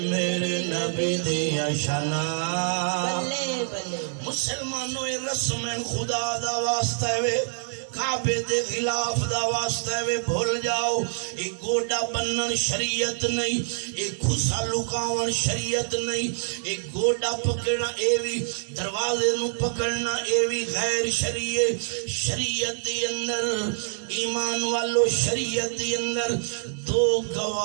نبی دیا شانہ مسلمانوں رسم خدا دا واسطہ ہے کعبے دے خلاف دا واسطہ ہے بھول جاؤ ایک گوڑا بنن شریعت نہیں ایک خسا لکاون شریعت نہیں ایک گوڑا پکڑنا ایوی دروازے نو پکڑنا ایوی غیر شریعت دی اندر ایمان والو شریعت دی اندر دو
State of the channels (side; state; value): left; silent; 61 dB below the other